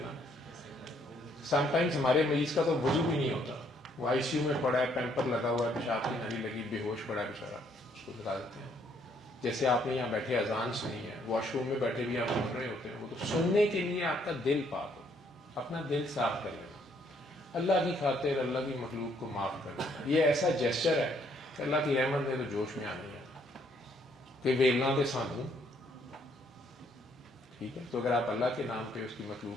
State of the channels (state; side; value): normal; both; correlation 0.68